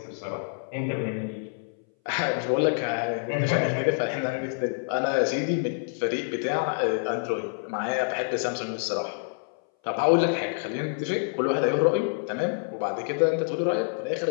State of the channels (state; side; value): silent; right; 59 dB below the other